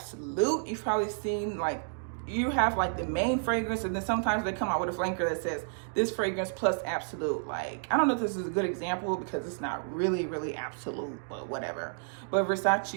You've probably seen like, you have like the main fragrance, and then sometimes they come out with a flanker that says this fragrance plus absolute. Like, I don't know if this is a good example because it's not really absolute, but whatever. But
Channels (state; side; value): silent; left; digital silence